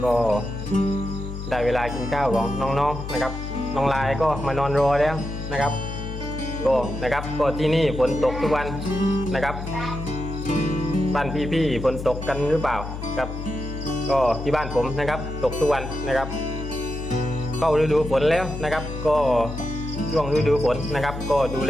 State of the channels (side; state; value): left; noise; hum, 7 dB below the sound